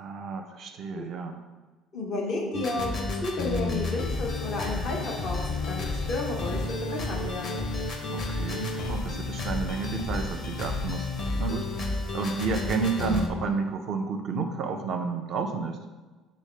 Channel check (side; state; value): both; normal; correlation 0.53